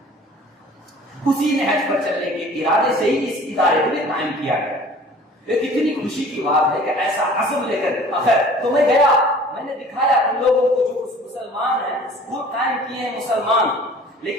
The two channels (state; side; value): normal; both; correlation 0.48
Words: اسی نہج پر چلنے کے ارادے سے ہی اس ادارے کو بھی قائم کیا گیا. یہ کتنی خوشی کی بات ہے کہ ایسا عزم لے کر آخر تو میں گیا, میں نے دکھایا ان لوگوں کو جو مسلمان ہیں, اسکول قائم کیے ہیں مسلمان,